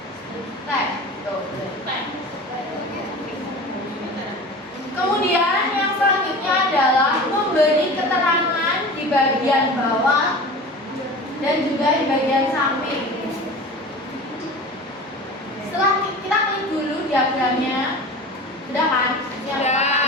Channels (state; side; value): normal; both; correlation 0.35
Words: Kemudian yang selanjutnya adalah memberi keterangan di bagian bawah dan juga di bagian samping. Setelah kita klik dulu diagramnya, sudah kan? Yang Sudah.